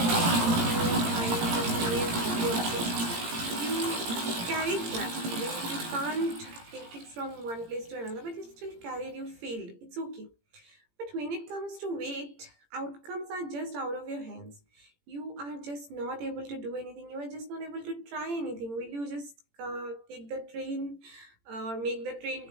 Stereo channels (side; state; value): left; late; 18 ms